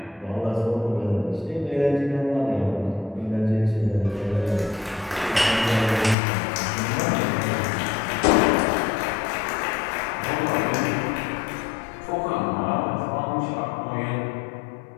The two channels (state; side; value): drops out; right; at 6.2 s